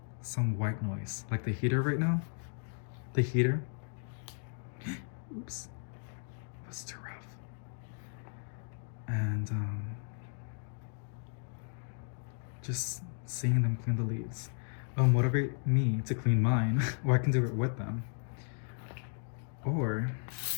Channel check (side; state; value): right; silent; 54 dB below the other